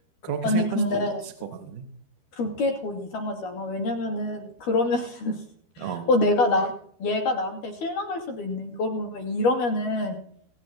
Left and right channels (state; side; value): late; right; 12 ms